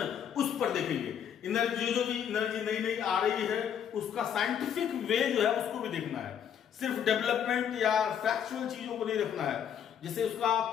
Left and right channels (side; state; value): right; quieter; 8.7 dB